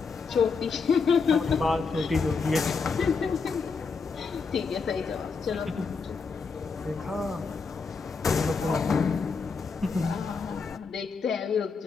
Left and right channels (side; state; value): right; quieter; 4.9 dB